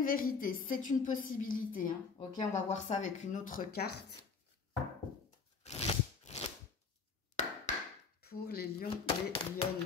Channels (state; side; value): quieter; right; 5.1 dB